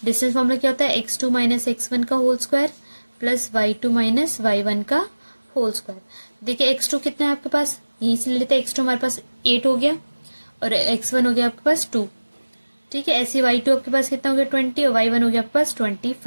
डिस्टेंस फॉर्मूला क्या होता है, x2 - x1 का whole square plus y2 - y1 का होल स्क्वायर। देखिए x2 कितना है आपके पास, यहीं से ले लेते हैं, x2 हमारे पास 8 हो गया, और x1 हो गया आपके पास 2, ठीक है। ऐसे y2 आपके पास कितना हो गया, 20, और y1 हो गया आपके पास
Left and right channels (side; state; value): both; inverted; correlation -1.00